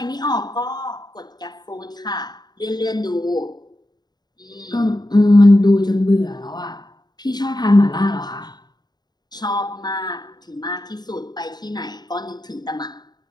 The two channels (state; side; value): late; right; 0.20 ms